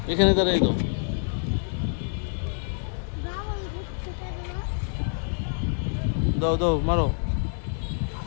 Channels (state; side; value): silent; right; digital silence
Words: এখানে দাঁড়াই দাও। বাবুল ঘুরতে থাকলো। দাও দাও মারো।